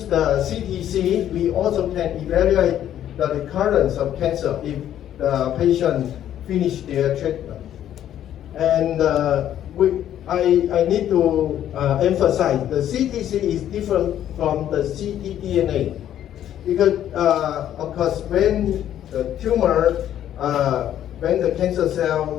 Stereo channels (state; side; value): quieter; right; 11.1 dB